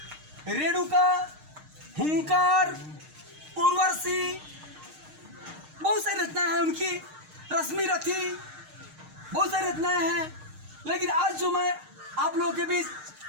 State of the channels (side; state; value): left; late; 6.5 ms